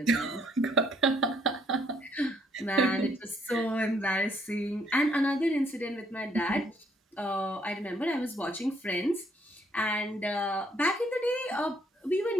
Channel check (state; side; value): normal; both; correlation 0.68